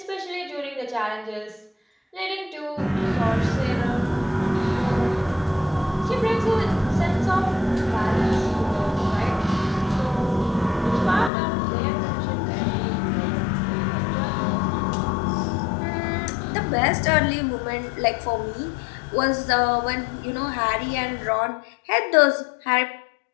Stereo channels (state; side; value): drops out; right; at 11.3 s